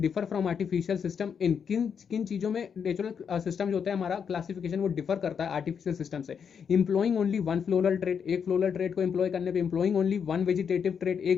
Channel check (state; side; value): quieter; right; 7.0 dB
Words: differ from artificial system in, किन किन चीजों में नेचुरल सिस्टम जो होता है हमारा क्लासिफिकेशन वो डिफर करता है आर्टिफिशियल सिस्टम से। इंप्लॉइंग ओनली वन फ्लोरल ट्रेट, एक फ्लोरल ट्रेट को इंप्लॉय करने पे। इंप्लॉइंग ओनली वन वेजिटेटिव ट्रेट, एक